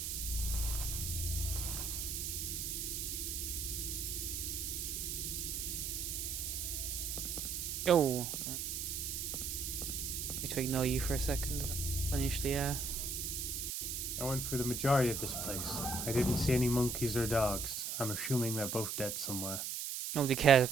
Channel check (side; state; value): right; noise; hiss, 3 dB below the sound